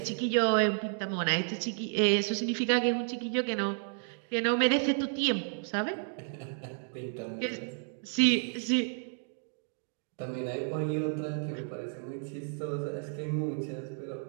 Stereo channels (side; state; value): left; silent; 57 dB below the other